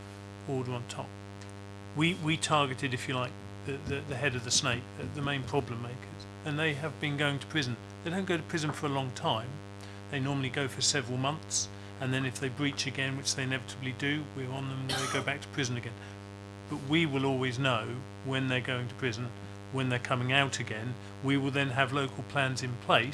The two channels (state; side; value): identical; both; correlation 1.00